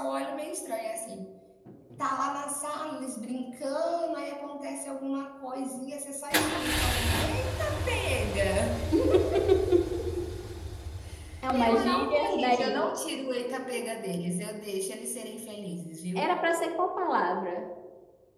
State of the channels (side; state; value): both; identical; correlation 1.00